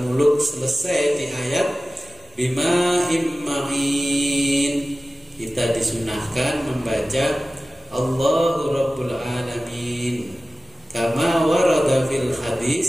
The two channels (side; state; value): both; normal; correlation 0.96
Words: selesai di ayat bimahim ma'in kita disunahkan membaca Allahu Rabbul Alamin kama warada fil